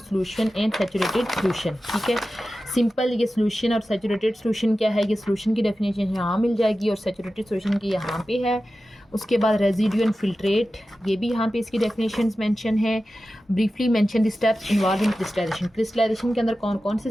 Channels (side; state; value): both; normal; correlation 0.94